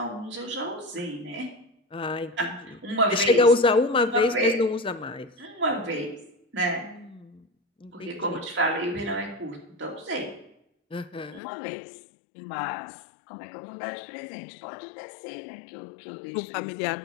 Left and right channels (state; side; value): drops out; right; at 11.4 s